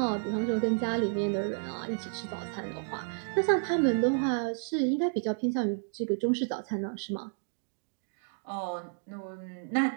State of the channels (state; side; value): silent; left; 57 dB below the other